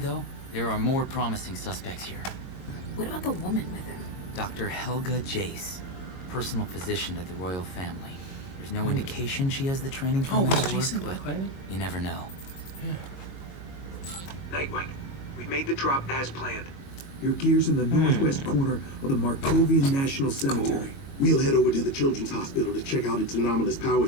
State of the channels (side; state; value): right; late; 22 ms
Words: there are more promising suspects here. What about the woman with him? Dr. Helga Jace, personal physician to the royal family. There's no indication she has the training for metal work, but you never know. Nightwing, we made the drop as planned. Your gear's in the northwest corner of the Markovian National Cemetery. We'll head over to the Children's Hospital to check out its anomalous power